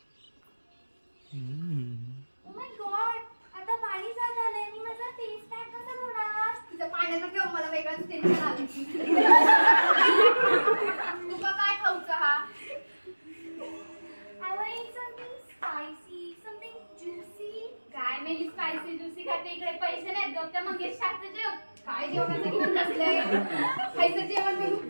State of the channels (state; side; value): inverted; both; correlation -1.00